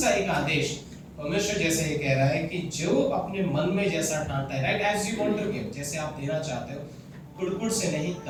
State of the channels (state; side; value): identical; both; correlation 1.00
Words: एक आदेश, परमेश्वर जैसे ये कह रहा है कि जो अपने मन में जैसा ठानता है, right? As you want to give, जैसे आप देना चाहते हो, कुड़कुड़ से नहीं,